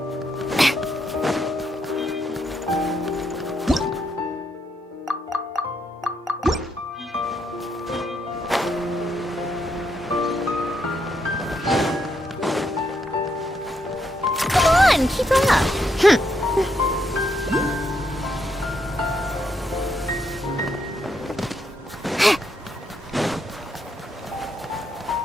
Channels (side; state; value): both; normal; correlation 0.78